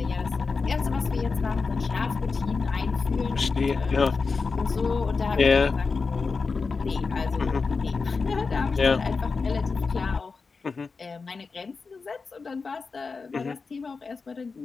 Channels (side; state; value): right; quieter; 4.6 dB